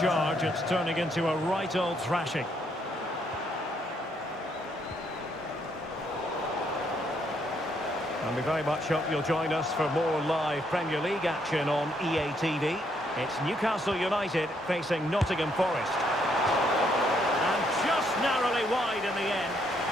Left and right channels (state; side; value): normal; both; correlation 0.72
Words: It's turning into a right old thrashing. And we very much hope you'll join us for more live Premier League action on EA TV. It's Newcastle United facing Nottingham Forest. And just narrowly wide in the end.